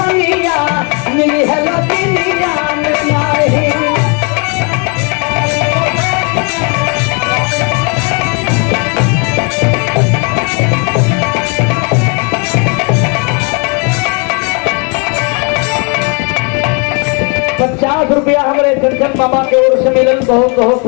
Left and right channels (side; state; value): right; quieter; 34.9 dB